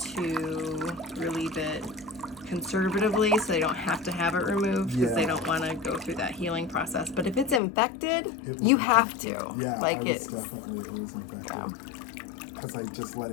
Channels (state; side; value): drops out; right; at 7.6 s